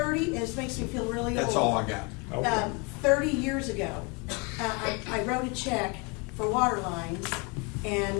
and this makes me feel really old. That's all I got. Okay. 30 years ago, I wrote a check for water lines,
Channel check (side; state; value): right; quieter; 30.7 dB